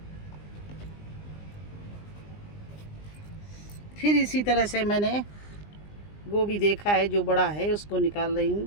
फिर इसी तरह से मैंने गोभी देखा है जो बड़ा है उसको निकाल रही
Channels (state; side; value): late; right; 20 ms